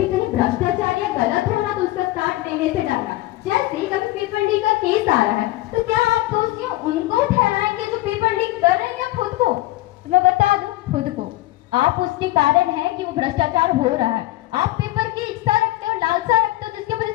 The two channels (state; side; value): quieter; right; 17.2 dB